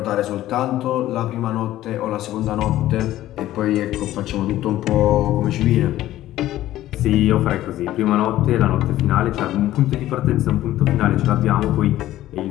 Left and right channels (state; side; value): quieter; right; 14.3 dB